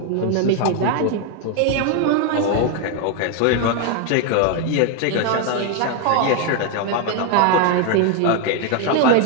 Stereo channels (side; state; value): both; different; correlation 0.01